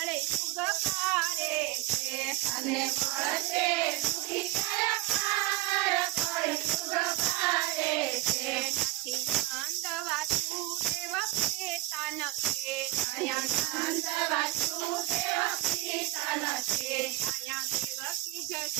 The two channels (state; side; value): quieter; left; 18.3 dB